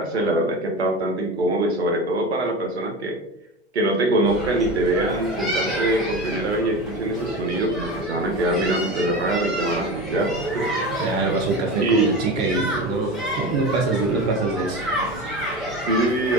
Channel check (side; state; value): both; normal; correlation 0.28